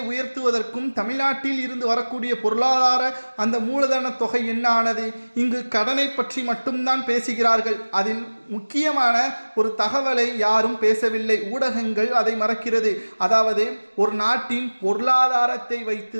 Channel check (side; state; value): both; inverted; correlation -1.00